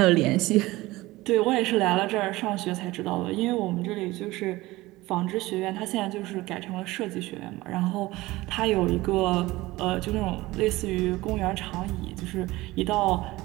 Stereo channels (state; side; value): quieter; left; 19.2 dB